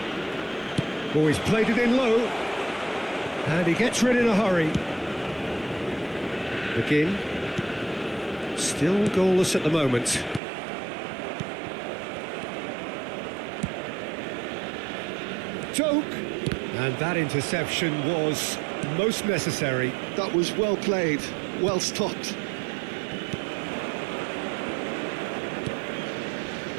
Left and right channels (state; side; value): drops out; left; at 10.4 s